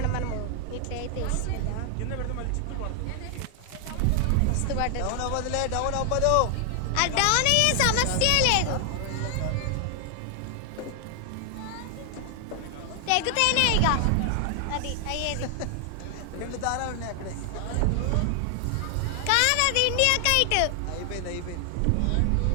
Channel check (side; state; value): both; different; correlation 0.00